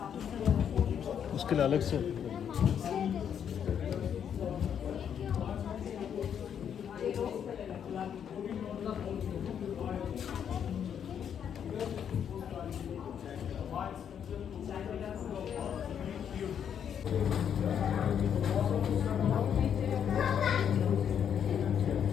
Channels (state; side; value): quieter; right; 8.4 dB